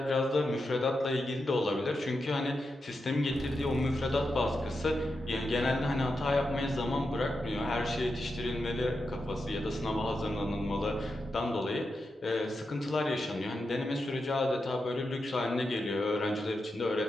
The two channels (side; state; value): both; normal; correlation 0.88